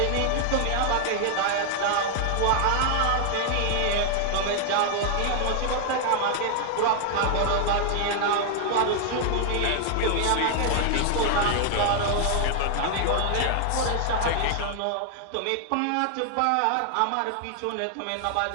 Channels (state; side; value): different; both; correlation 0.00